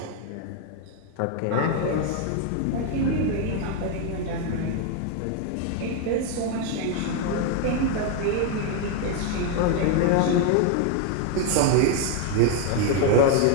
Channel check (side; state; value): both; different; correlation 0.01